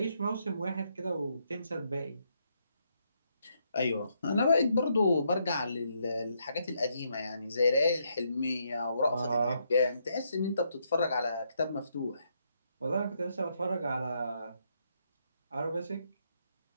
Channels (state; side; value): inverted; both; correlation -0.76